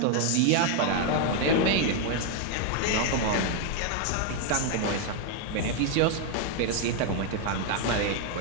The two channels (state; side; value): different; both; correlation 0.00